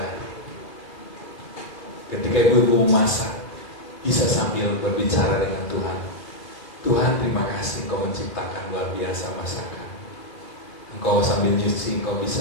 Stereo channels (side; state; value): right; late; 2.4 ms